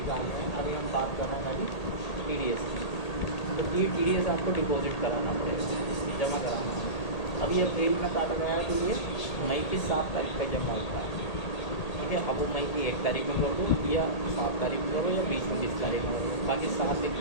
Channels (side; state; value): right; late; 1.8 ms